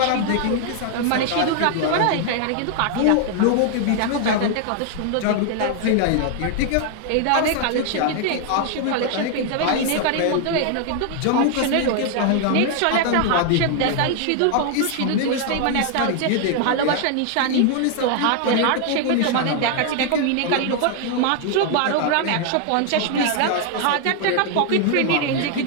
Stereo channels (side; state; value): both; different; correlation 0.00